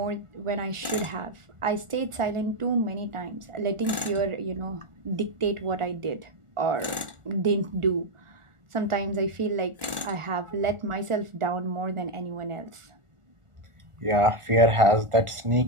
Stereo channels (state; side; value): late; left; 1.4 ms